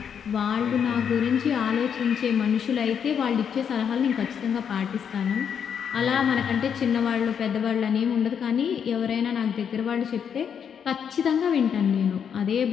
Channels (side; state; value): right; quieter; 7.7 dB